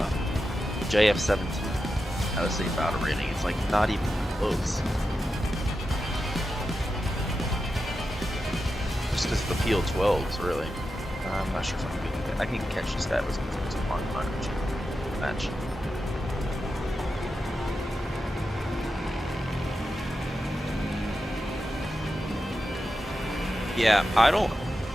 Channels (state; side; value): normal; both; correlation 0.90